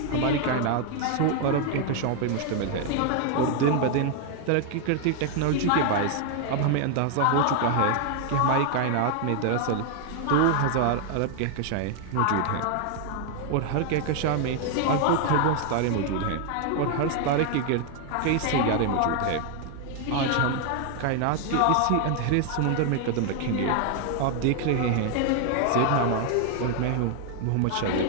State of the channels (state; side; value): different; both; correlation 0.00